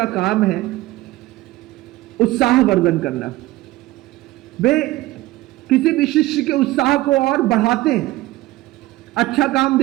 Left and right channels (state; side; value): quieter; left; 17.7 dB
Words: काम है उत्साह वर्धन करना। वे किसी भी शिष्य के उत्साह को और बढ़ाते हैं, अच्छा काम